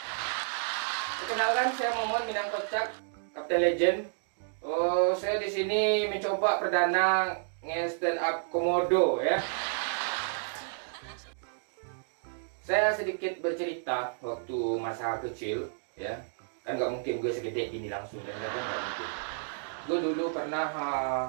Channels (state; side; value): silent; left; digital silence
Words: Perkenalkan saya Momon Minang Kocak, Kapten Legend. Oh, saya di sini mencoba perdana nge-stand up komodo ya. Saya sedikit bercerita waktu masa kecil ya. Kan nggak mungkin gue segede gini langsung dan nggak mungkin. Gue dulu pernah